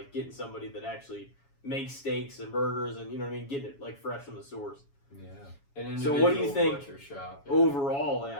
getting somebody that actually makes steaks and burgers and you know what I mean, getting it like fresh from the source. Yeah. An So what do you individual think butcher shop. Yeah. Overall,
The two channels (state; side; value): late; right; 7.2 ms